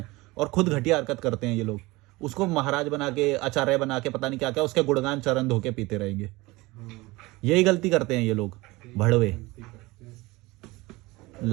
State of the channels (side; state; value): left; quieter; 21.7 dB